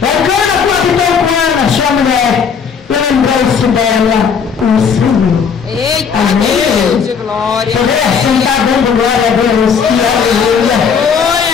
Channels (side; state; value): right; quieter; 6.4 dB